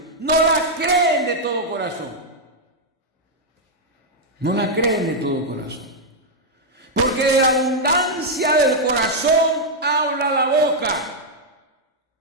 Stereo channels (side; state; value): both; normal; correlation -0.03